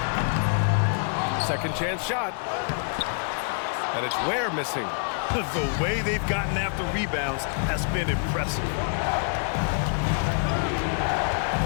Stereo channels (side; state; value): right; silent; digital silence